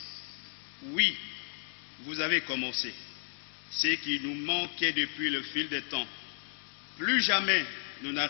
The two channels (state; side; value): silent; right; digital silence